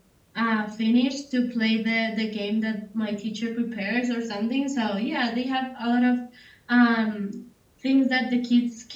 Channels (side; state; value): both; identical; correlation 1.00